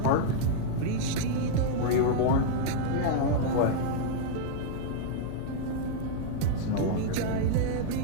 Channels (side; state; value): both; different; correlation -0.01